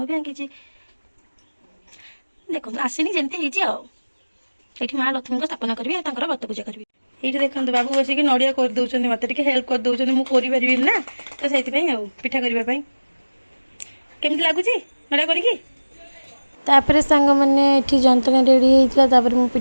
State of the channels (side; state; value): both; inverted; correlation -1.00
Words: भी आंकी देखो आसनी जमी ये माँ लक्ष्मी को स्थापना करी व्रत पूजा करी। ये देखो बाबू बसिक नड़िया करदे मत हेल्प करदे मुझे पारि ना तो से पिठा करने केमती लगुच नड़िया करी तापर सांग मैंने ये जंतनी रेडी होता मु